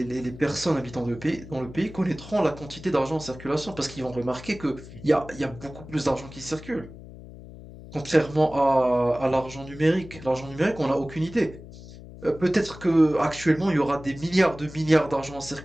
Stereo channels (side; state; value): left; noise; hum, 16 dB below the sound